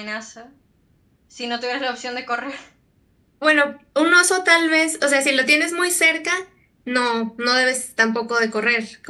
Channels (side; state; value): both; identical; correlation 1.00